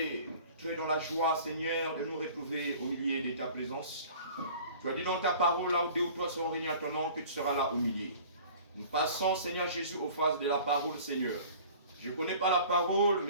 dans la joie, Seigneur, de nous retrouver au milieu de ta présence. Tu as dit dans ta parole, là où 2 ou 3 seront réunis à ton nom, que tu seras là au milieu. Nous passons, Seigneur Jésus, aux phases de la parole, Seigneur. Je ne connais pas la parole,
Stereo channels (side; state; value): both; inverted; correlation -0.46